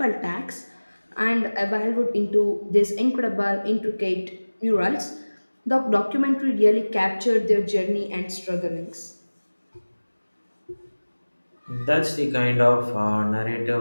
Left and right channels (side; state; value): both; inverted; correlation -1.00